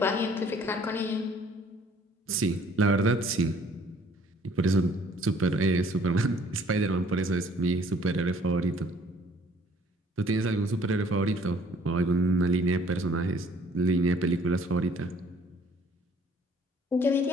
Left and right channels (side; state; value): both; normal; correlation 0.57